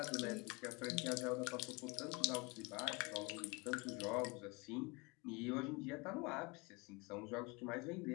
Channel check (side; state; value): right; quieter; 27.3 dB